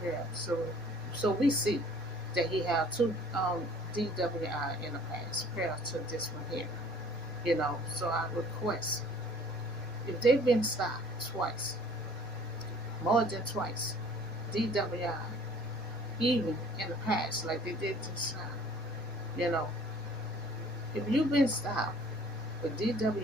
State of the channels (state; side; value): normal; both; correlation 0.53